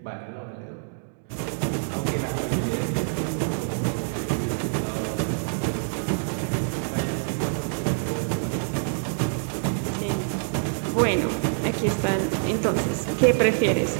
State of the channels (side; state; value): left; silent; digital silence